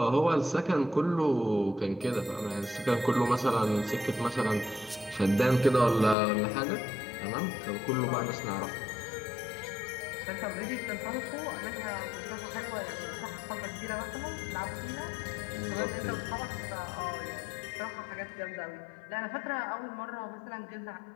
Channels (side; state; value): right; drops out; at 6.2 s